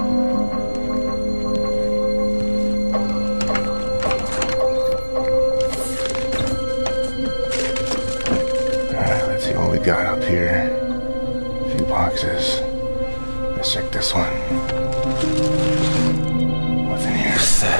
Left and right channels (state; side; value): inverted; both; correlation -1.00